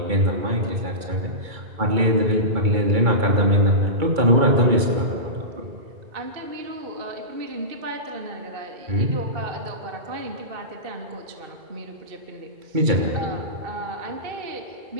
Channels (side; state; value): left; late; 2.3 ms